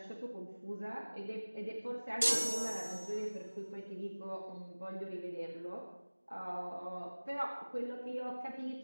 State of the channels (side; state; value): both; inverted; correlation -1.00